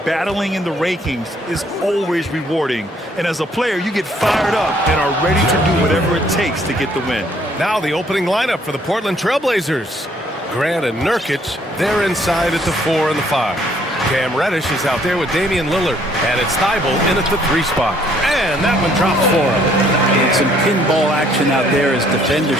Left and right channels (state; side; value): normal; both; correlation 0.64